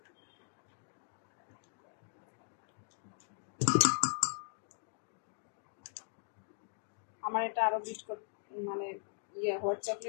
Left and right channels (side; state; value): right; silent; digital silence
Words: আমার এটা আরো বিট করতে, মানে হোয়াইট